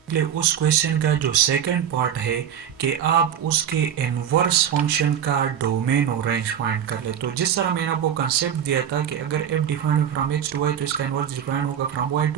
उस क्वेश्चन का जो सेकंड पार्ट है कि आप उसके इनवर्स फंक्शन का डोमेन और रेंज फाइंड कर ले। तो जिस तरह मैंने आपको कंसेप्ट दिया था कि अगर f defined from x to y तो इसका इनवर्स डिफाइंड होगा फ्रॉम y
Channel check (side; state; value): left; quieter; 9.0 dB